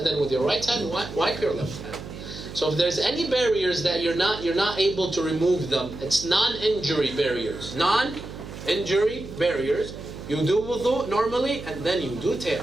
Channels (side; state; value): right; noise; hum, 12 dB below the sound